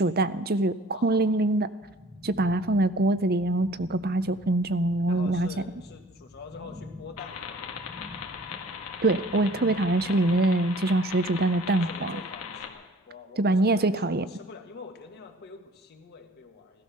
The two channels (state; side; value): normal; both; correlation 0.51